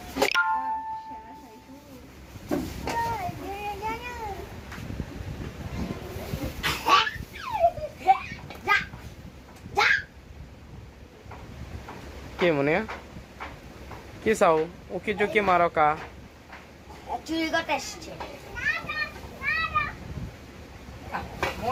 কে মনে কি চাও উকি চুকি মারো কা চুরি করতে এসছে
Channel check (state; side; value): identical; both; correlation 1.00